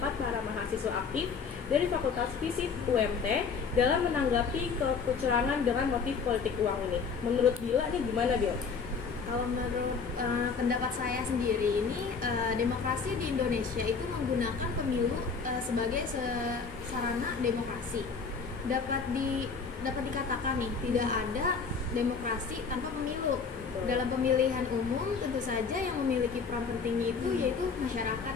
para mahasiswa aktif dari Fakultas Fisip UMT dalam menanggapi kecurangan dengan motif politik uang ini. Menurut Bila nih gimana, Bil? Kalau menurut pendapat saya sendiri ini, demokrasi di Indonesia itu menggunakan pemilu sebagai sarana demokrasi. Dapat dikatakan nih, tidak ada demokrasi tanpa pemilu. Dalam pemilihan umum tentu saja yang memiliki peran penting itu yaitu masyarakat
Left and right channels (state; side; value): quieter; right; 5.4 dB